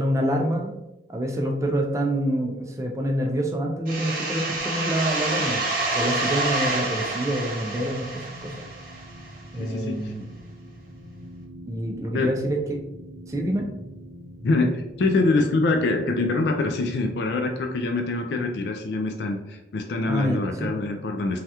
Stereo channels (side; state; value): both; normal; correlation 0.57